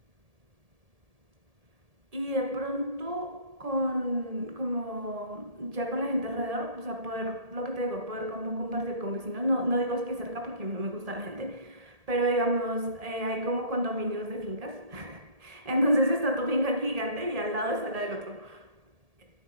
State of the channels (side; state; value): left; late; 1.7 ms